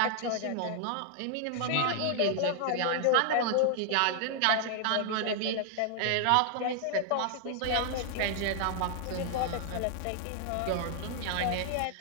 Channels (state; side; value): different; both; correlation 0.00